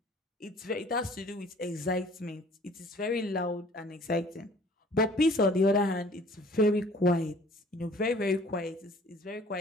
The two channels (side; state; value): both; normal; correlation 0.52